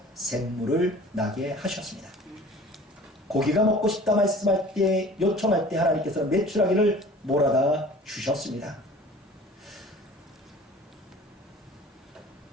샘물을 나게 하셨습니다. 고기가 먹고 싶다 말씀할 때, 요청할 때 하나님께서는 메추라기를 몰아다 주셨습니다.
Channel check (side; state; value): both; normal; correlation 0.45